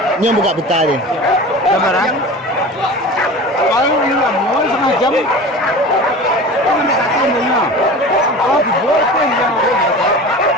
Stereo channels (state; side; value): normal; both; correlation 0.35